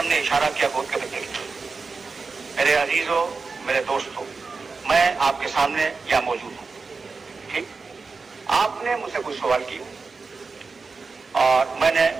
ने इशारा किया गोद के बच्चे की। मेरे अजीजों, मेरे दोस्तों, मैं आपके सामने यहाँ मौजूद हूँ, ठीक? आपने मुझसे कुछ सवाल किए और मैंने,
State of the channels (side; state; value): left; quieter; 4.4 dB